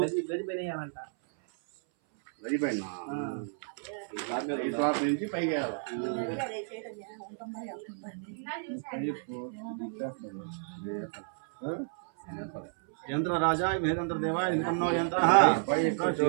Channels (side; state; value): left; silent; 57 dB below the other